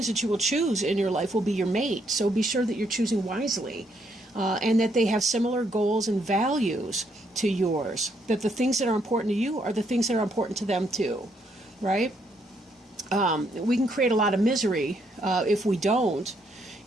that you will choose in your life will be your mate. So be sure that you're choosing wisely, and that they have similar goals and values to yours. That the things that are important to you are the things that are important to them too. Right? We can create a lot of misery if we don't.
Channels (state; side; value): normal; both; correlation 0.73